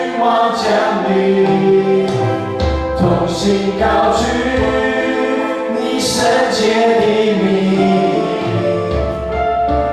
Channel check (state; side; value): identical; both; correlation 1.00